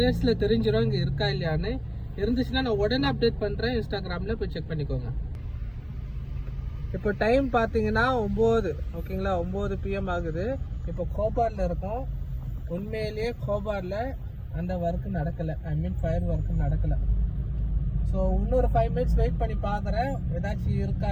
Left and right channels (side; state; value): both; identical; correlation 1.00